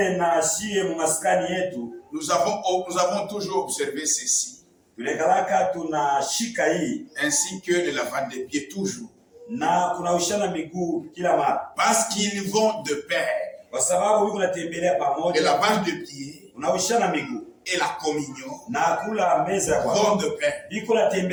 na shie mumaskani yetu nous avons toujours observé ceci, tulekalaka tunashika hii, ainsi que le lavage des pieds toujours. na kuna ushana miguu kila mara, Parce qu'ils vont de pair. kwa sababu wiko natembelea Le pamoja. lavage de pieds Kuna ushana miguu et la communion na kula meza ya vont Bwana, de pair. iko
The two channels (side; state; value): both; identical; correlation 1.00